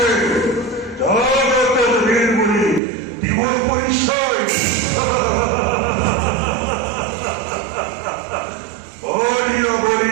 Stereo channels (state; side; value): drops out; left; at 2.8 s